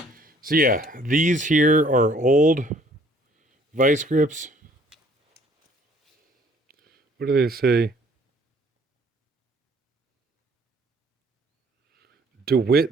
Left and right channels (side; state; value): both; normal; correlation 0.58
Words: So yeah, these here are old vice grips. What do they say?